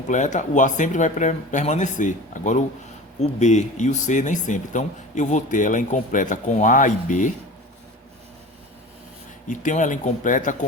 o A sempre vai permanecer. Agora o B e o C nem sempre. Então, eu vou ter ela incompleta com A e B e tenho ela incompleta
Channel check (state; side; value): normal; both; correlation 0.36